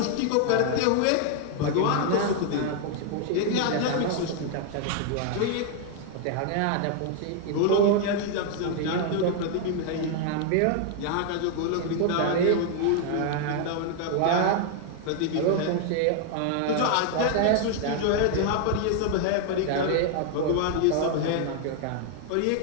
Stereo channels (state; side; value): different; both; correlation 0.00